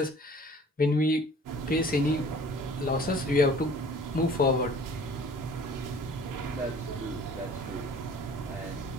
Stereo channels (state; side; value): normal; both; correlation 0.50